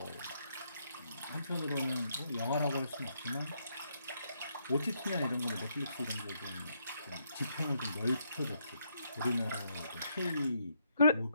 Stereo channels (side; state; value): both; inverted; correlation -0.76